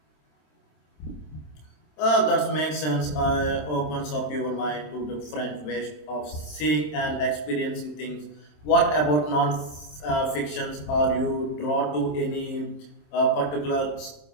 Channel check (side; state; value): right; late; 27 ms